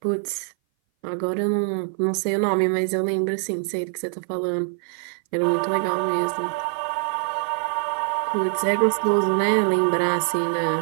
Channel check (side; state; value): left; silent; 58 dB below the other